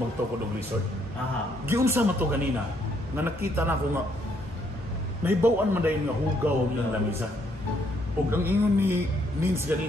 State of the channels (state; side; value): normal; both; correlation 0.71